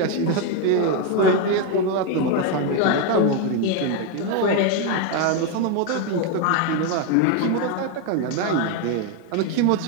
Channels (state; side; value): different; both; correlation 0.02